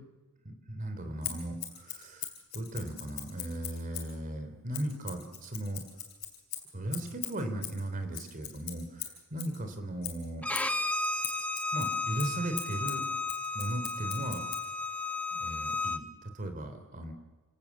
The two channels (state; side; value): normal; both; correlation 0.58